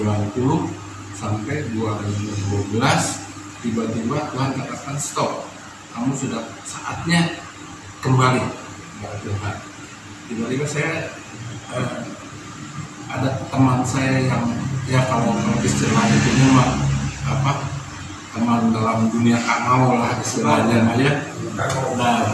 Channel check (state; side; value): identical; both; correlation 1.00